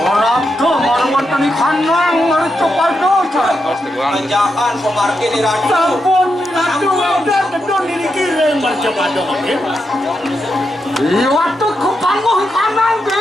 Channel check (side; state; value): both; normal; correlation 0.85